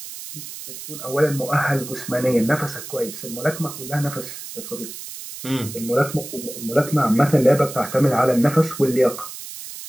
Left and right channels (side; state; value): right; noise; hiss, 11 dB below the sound